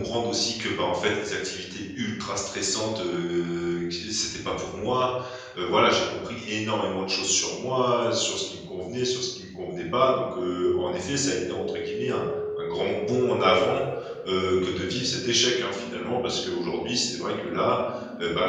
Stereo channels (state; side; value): identical; both; correlation 1.00